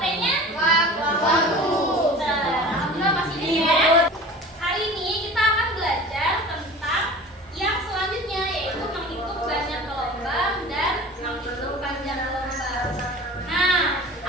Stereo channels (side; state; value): both; normal; correlation 0.39